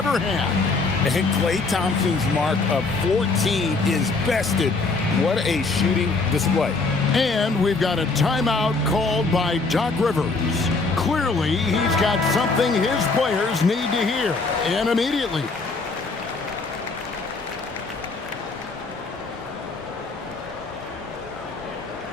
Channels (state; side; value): quieter; right; 3.8 dB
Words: had. And Klay Thompson's mark of 14 is bested. What a shooting display. And we've got a timeout called by Doc Rivers. Clearly, he's got something his players need to hear, and immediately.